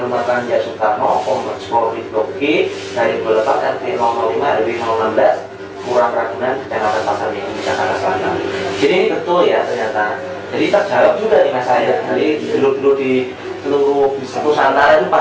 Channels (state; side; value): identical; both; correlation 1.00